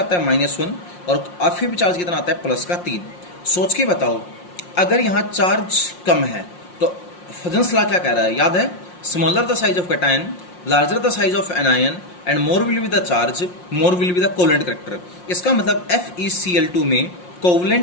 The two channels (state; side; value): late; right; 5.6 ms